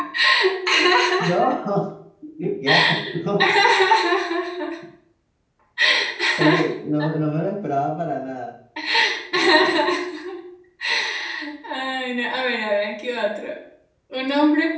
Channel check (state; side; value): identical; both; correlation 1.00